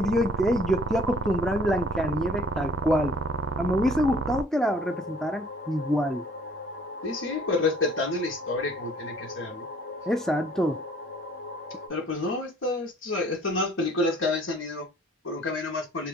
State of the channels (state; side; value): normal; both; correlation 0.56